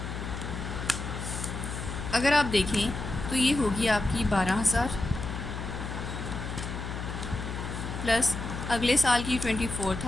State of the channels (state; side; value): noise; left; hum, 6 dB below the sound